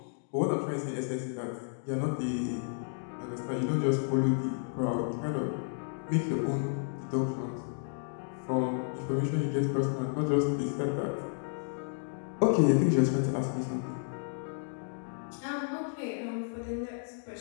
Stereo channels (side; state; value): right; silent; digital silence